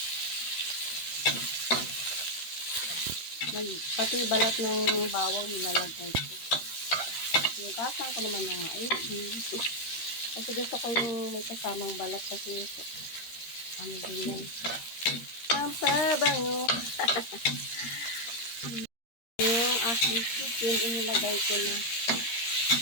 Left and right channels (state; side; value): late; right; 13 ms